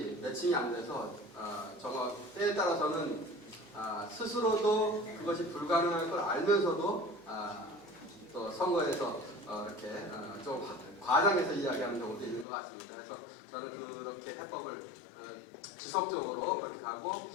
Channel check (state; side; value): drops out; right; at 12.5 s